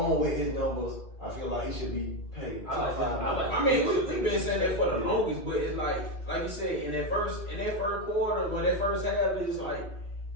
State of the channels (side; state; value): right; late; 2.3 ms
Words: with his numbers, I feel like he should be paid. I like top him. I like five. I mean, we've been saying that for the longest, but it's like you said, in that first quarter, or that first half, it's like